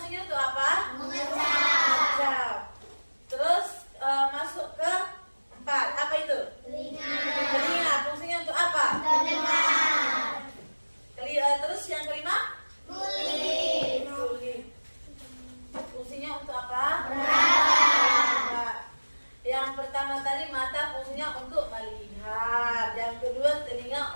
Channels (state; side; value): inverted; both; correlation -1.00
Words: untuk apa? Mengecap. Terus masuk ke 4. Apa itu? Telinga fungsinya untuk apa? Mendengar. Terus yang kelima? Kulit. Fungsinya untuk apa? Meraba. Yang pertama tadi mata fungsinya untuk melihat. Yang kedua telinga